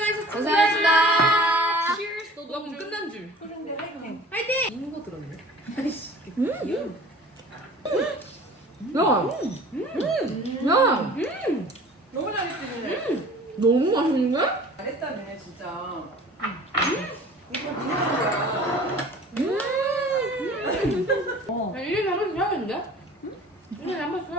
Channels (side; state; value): both; normal; correlation 0.45